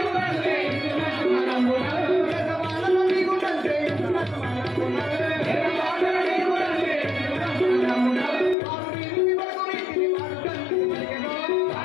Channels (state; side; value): drops out; right; at 8.6 s